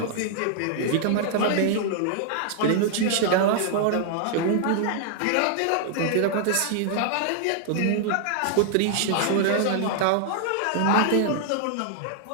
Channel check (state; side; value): different; both; correlation -0.01